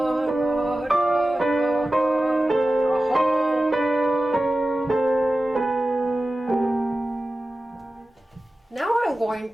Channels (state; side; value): normal; both; correlation 0.95